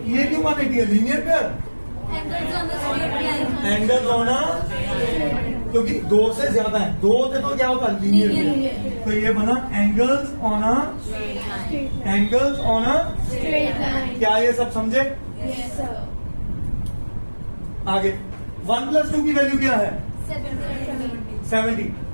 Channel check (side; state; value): both; inverted; correlation -1.00